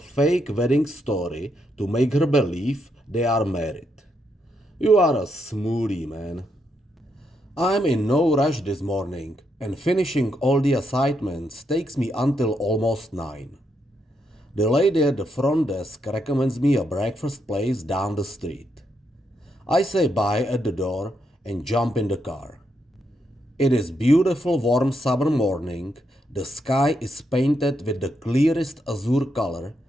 wedding story to make her believe they are married. You are a smoothie, man. I'm in no rush this morning, and finishing all the assignments takes me until almost 9. The lady at the front desk recommends me a breakfast place down the street. I say bye at the door and jump in the car. It is beautiful warm summer morning, the sky is painted with the clearest azure color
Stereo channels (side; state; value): both; normal; correlation 0.80